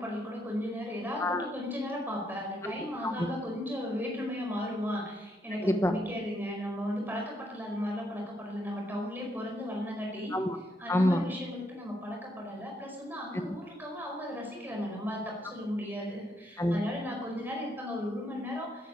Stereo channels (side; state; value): both; normal; correlation 0.75